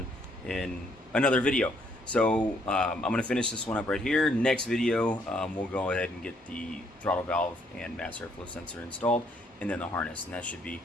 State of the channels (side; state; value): both; normal; correlation 0.69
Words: in another video. So I'm gonna finish this one up right here. Next video, we'll go ahead and get the throttle valve and mass airflow sensor installed, and then the harness, and that should be